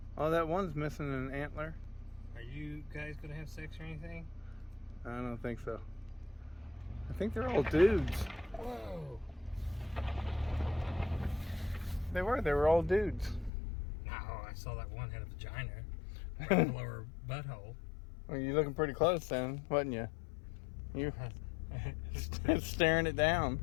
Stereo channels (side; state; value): right; drops out; at 13.5 s